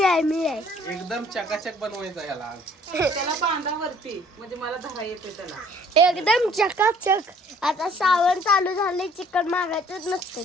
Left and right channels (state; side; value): normal; both; correlation 0.57